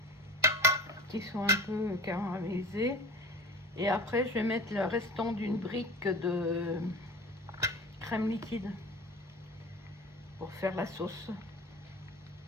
qui sont un peu caramélisés. Et après je vais mettre le restant d'une brique de crème liquide pour faire la sauce.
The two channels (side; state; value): both; normal; correlation 0.38